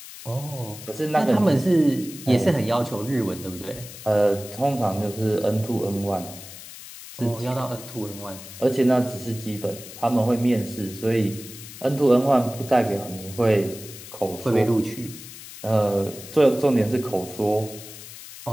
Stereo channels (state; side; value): noise; left; hiss, 14 dB below the sound